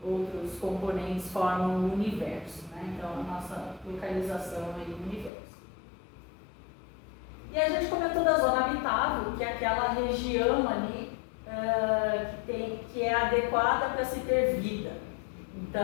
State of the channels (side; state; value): right; drops out; at 5.3 s